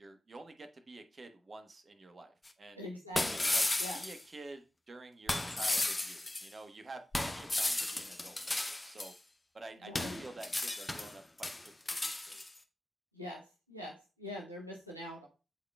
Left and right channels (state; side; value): normal; both; correlation 0.95